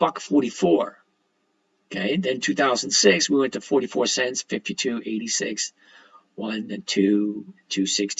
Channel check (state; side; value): identical; both; correlation 1.00